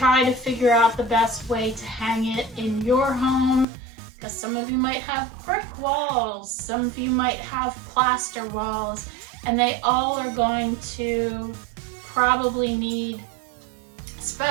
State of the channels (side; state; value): left; drops out; at 3.7 s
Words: to figure out the best way to hang it in your home, because some of you might have brick walls, some of you might have plaster walls, and they all are going to probably need